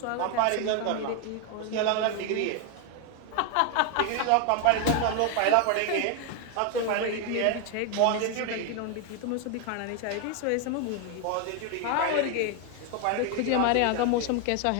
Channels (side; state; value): both; different; correlation 0.01